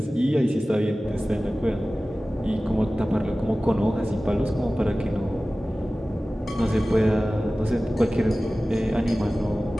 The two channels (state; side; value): normal; both; correlation 0.97